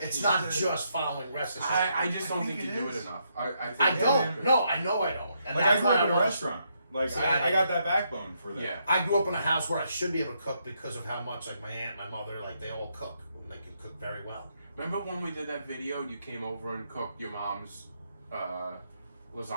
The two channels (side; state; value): both; inverted; correlation -0.77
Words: Yeah. not just following recipes. I just don't I think think you it do it is. enough. I I think don't. No, I know I don't. And Like I that's grew why up in a want- restaurant. Like See, I got that backbone for that. Yeah. I grew up in a house where I should be able to cook because of how much like my aunt, my mother, like they all cook. They can cook very well. Remember when we did that video? You came over and cooked your mom's